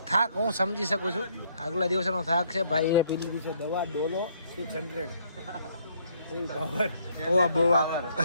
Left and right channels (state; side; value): inverted; both; correlation -0.67